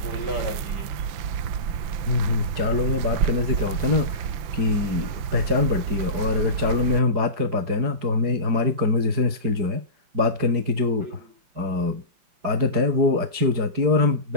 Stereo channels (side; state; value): left; late; 4.9 ms